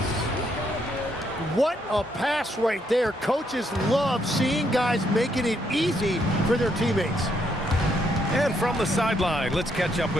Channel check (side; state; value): both; normal; correlation 0.74